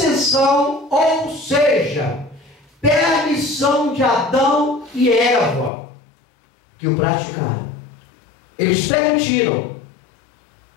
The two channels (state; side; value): drops out; right; at 5.7 s